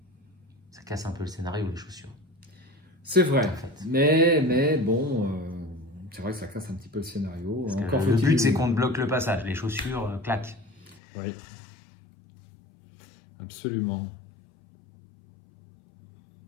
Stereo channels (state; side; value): drops out; right; at 11.0 s